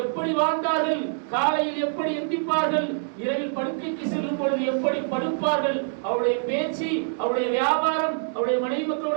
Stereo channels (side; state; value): left; silent; digital silence